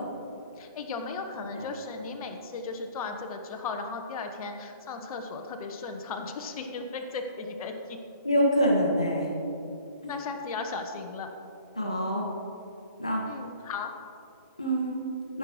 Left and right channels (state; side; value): inverted; both; correlation -0.52